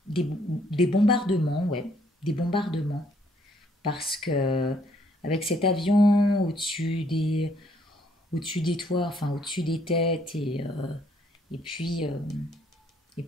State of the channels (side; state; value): both; normal; correlation 0.67